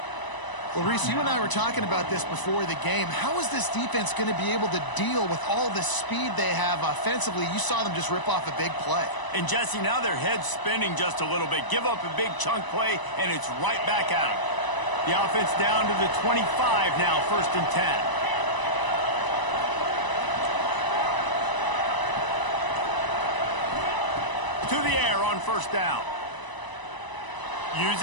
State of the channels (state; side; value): late; right; 1.0 ms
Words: Well, Reese, you and I were talking about this before the game. How is this defense going to be able to deal with all the speed they have offensively? You saw them just rip off a big play. And, Jesse, now their head's spinning just a little bit. Give up a big chunk play, and it's right back at them. The offense down to the 25 now, 1st and 10. To the air on first down.